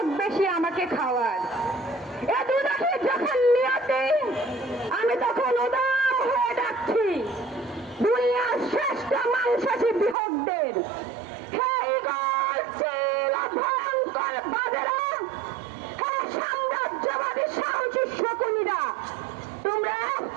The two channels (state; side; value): drops out; left; at 10.2 s